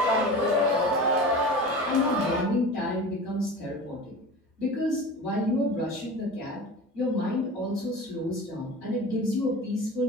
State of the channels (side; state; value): both; normal; correlation 0.34